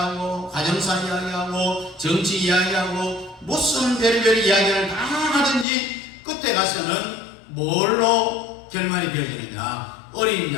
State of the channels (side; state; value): right; drops out; at 5.7 s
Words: 가정사 이야기하고 정치 이야기하고 무슨 별별 이야기를 다 하든지 끝에 가서는 뭘로 결말이 되어지느냐? 어린